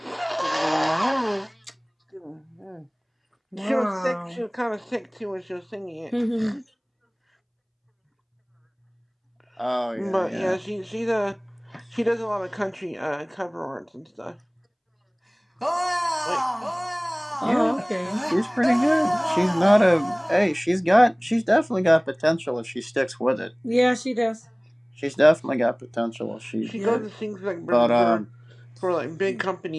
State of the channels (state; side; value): identical; both; correlation 1.00